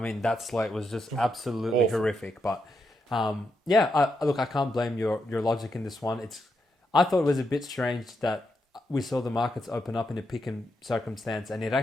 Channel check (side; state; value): both; normal; correlation 0.83